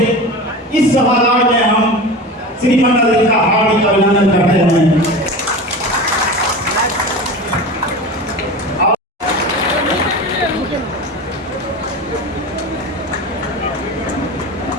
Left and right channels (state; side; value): normal; both; correlation 0.31